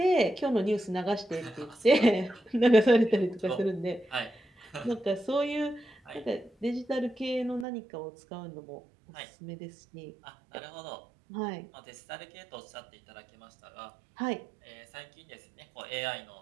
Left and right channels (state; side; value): drops out; left; at 7.7 s